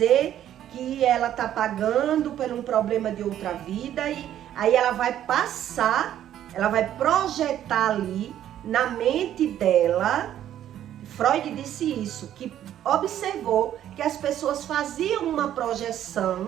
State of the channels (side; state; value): left; quieter; 11.3 dB